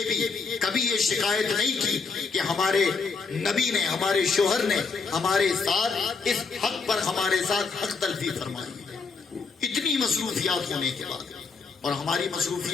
بھی کبھی یہ شکایت نہیں کی کہ ہمارے نبی نے، ہمارے شوہر نے ہمارے ساتھ اس حق پر ہمارے ساتھ حق تلفی فرمائی. اتنی مصروفیات ہونے کے بعد، اور ہماری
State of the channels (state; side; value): quieter; right; 4.7 dB